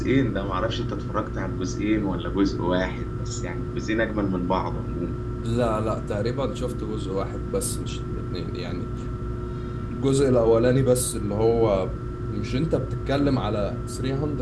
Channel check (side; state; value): both; identical; correlation 1.00